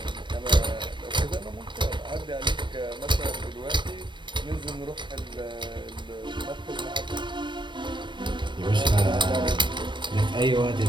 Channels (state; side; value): late; left; 0.23 ms